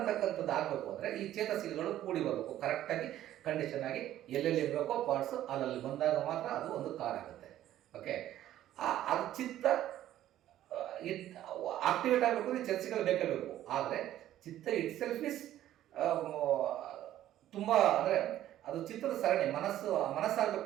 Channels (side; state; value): left; quieter; 12.8 dB